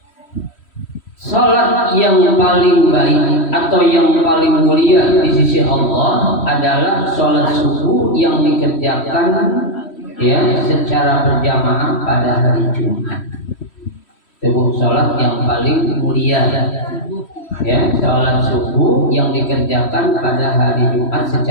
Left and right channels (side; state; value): right; late; 3.1 ms